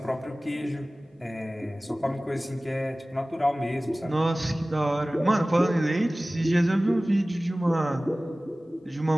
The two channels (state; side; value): normal; both; correlation 0.98